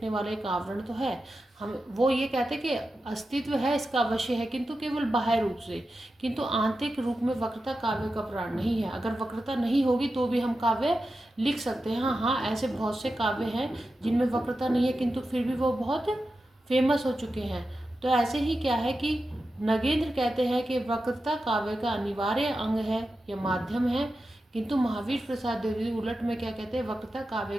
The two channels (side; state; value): both; normal; correlation 0.91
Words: वाला एक आवरण तो है, हम वो ये कहते हैं कि अस्तित्व है इसका अवश्य है, किंतु केवल बाह्य रूप से, किंतु आंतरिक रूप में वक्रता काव्य का प्राण नहीं है। अगर वक्रता नहीं होगी तो भी हम काव्य लिख सकते हैं। हाँ, ऐसे बहुत से काव्य हैं जिनमें वक्रता नहीं है किंतु फिर भी वो बहुत फेमस हो चुके हैं। तो ऐसे ही क्या है कि नगेंद्र कहते हैं कि वक्रता काव्य का अनिवार्य अंग है या माध्यम है, किंतु महावीर प्रसाद द्विवेदी उलट में क्या कहते हैं, वक्रता काव्य